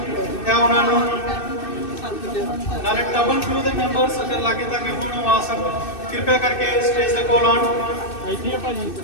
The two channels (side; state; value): right; late; 2.6 ms